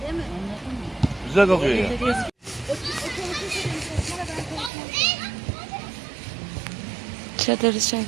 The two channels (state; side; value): drops out; left; at 4.7 s